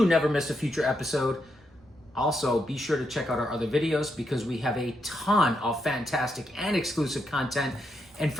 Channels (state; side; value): noise; right; rumble, 29 dB below the sound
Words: never miss a future episode. Also, be sure to check out our other videos because we have a ton of fantastic and exclusive content. And